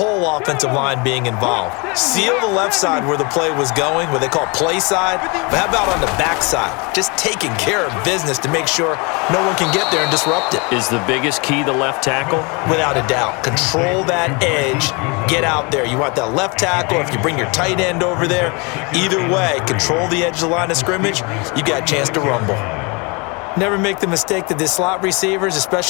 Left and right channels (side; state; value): right; quieter; 29.8 dB